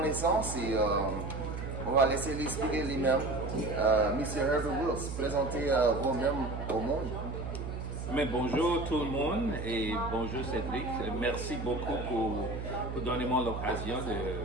et on va laisser l'expliquer lui-même. Monsieur Herbert Wills, présentez vous-même au monde. Mais bonjour tout le monde et bonjour Cédric. Merci beaucoup pour donner moi l'occasion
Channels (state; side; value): noise; right; hum, 6 dB below the sound